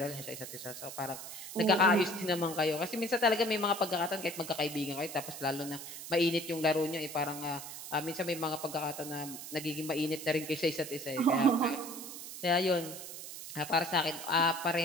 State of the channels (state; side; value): noise; right; hiss, 10 dB below the sound